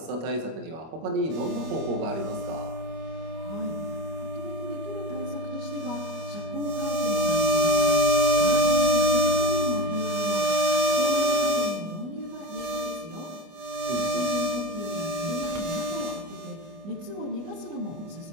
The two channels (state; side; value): late; left; 25 ms